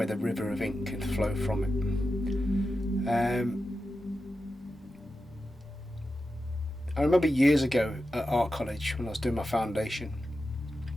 the river of ink can flow from it. I remember years ago at art college when I was doing my foundation,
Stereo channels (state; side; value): normal; both; correlation 0.91